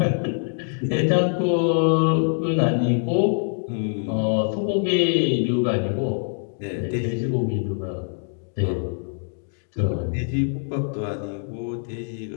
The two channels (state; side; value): silent; right; digital silence